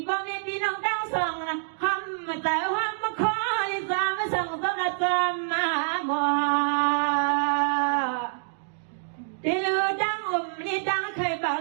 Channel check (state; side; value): silent; left; digital silence